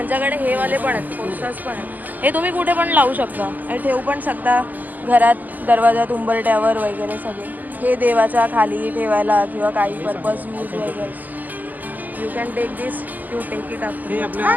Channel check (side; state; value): left; late; 0.083 ms